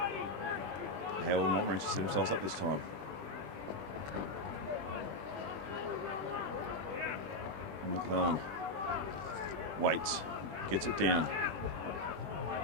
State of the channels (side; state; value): left; late; 20 ms